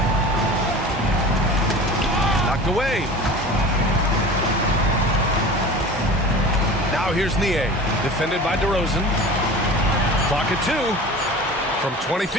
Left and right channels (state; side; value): normal; both; correlation 0.37